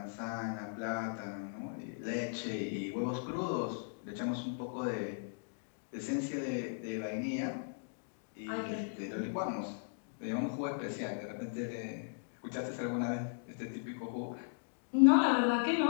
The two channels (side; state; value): right; silent; digital silence